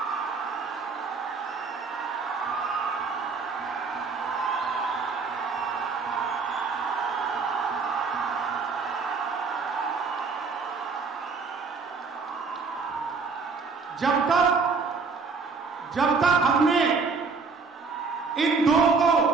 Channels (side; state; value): left; quieter; 4.7 dB